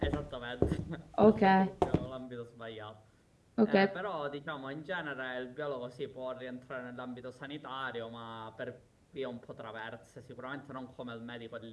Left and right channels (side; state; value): both; identical; correlation 1.00